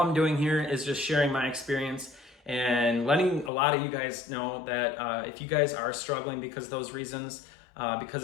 doing here is just sharing my experience and letting a lot of you guys know that if you guys are struggling because of those reasons,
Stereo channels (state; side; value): drops out; right; at 3.5 s